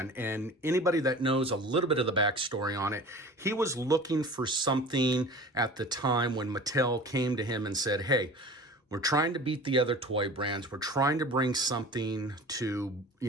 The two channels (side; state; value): both; normal; correlation 0.39